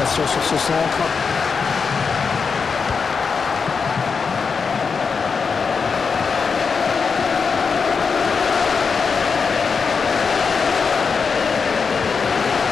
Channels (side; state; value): right; quieter; 5.4 dB